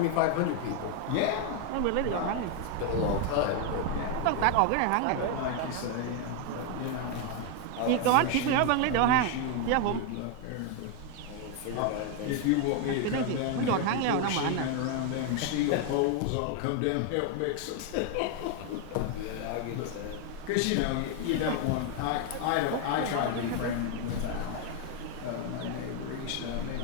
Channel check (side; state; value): both; different; correlation 0.01